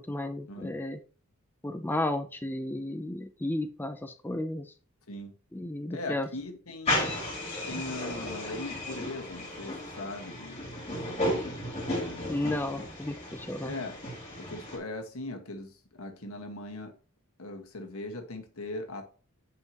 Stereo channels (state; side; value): normal; both; correlation 0.43